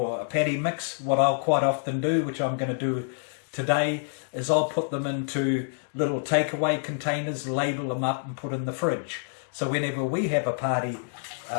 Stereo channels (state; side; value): silent; right; digital silence